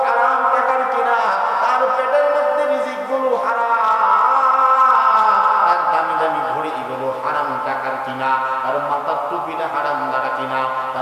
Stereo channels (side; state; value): both; identical; correlation 1.00